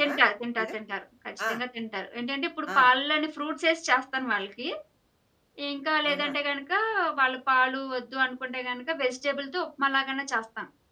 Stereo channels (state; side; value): identical; both; correlation 1.00